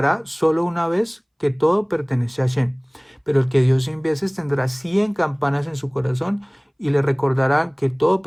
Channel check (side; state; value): both; identical; correlation 1.00